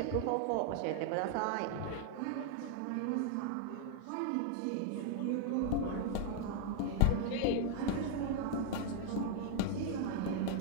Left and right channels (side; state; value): both; different; correlation 0.00